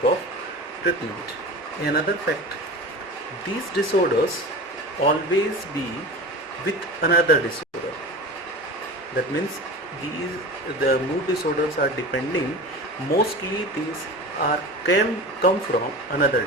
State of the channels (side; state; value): both; normal; correlation 0.33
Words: of treatment. Another fact, these disorders always be with another disorder. That means the mood disorders are depending, mostly these are can come from another